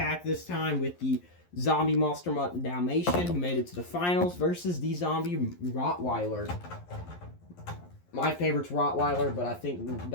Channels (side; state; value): right; late; 11 ms